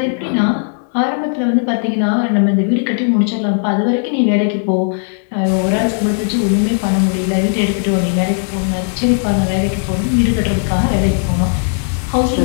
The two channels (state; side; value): silent; right; digital silence